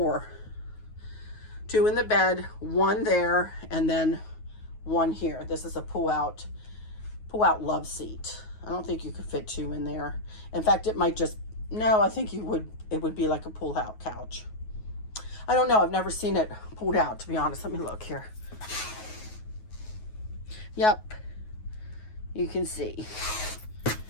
2 in the bed, 1 there, and then 1 here. This is a pull-out love seat. I don't think you could fit 2 in there. In fact, it might just, no, I think it would be like a pull-out couch. I don't know. I've never seen it pulled out, to be honest. Let me look here. Yep. You can see.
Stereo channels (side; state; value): right; late; 9.4 ms